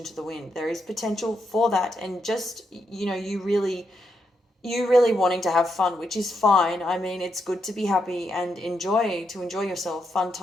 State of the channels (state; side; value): normal; both; correlation 0.81